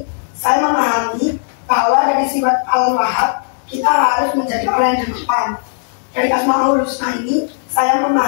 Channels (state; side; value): silent; right; digital silence